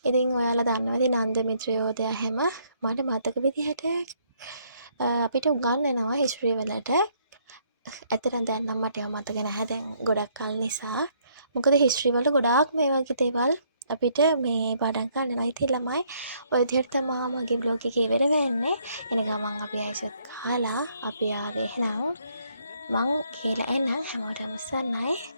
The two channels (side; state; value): both; inverted; correlation -0.68